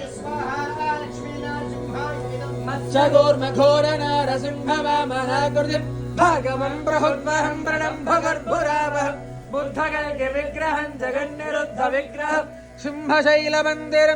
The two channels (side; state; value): both; identical; correlation 1.00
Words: स्वाहा लक्ष्मीनारसिंहाय इदं मत्स्यगोर्मघोरनारसिंहवामनाकृतिं भागवं प्रहुर्वहं प्रणम्भगर्भुरावहं बुद्धगल्गिविग्रहं जगन्निरुद्धविग्रहं